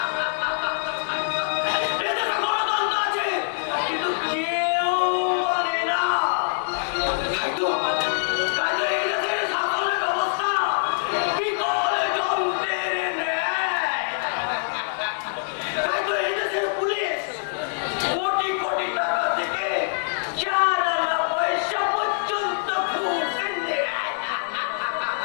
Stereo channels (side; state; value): right; silent; digital silence